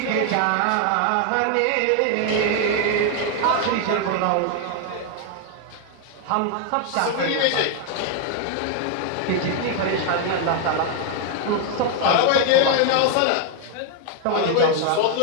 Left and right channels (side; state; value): both; different; correlation 0.00